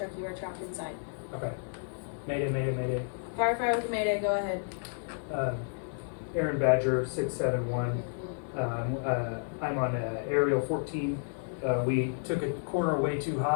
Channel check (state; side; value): silent; right; digital silence